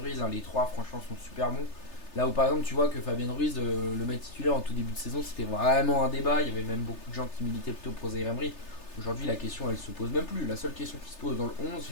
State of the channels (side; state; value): right; late; 3.3 ms